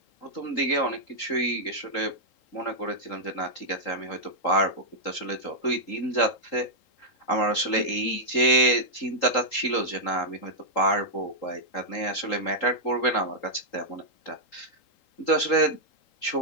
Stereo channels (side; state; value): right; late; 3.8 ms